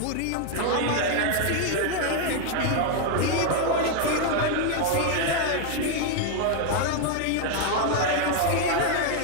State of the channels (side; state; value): both; different; correlation 0.00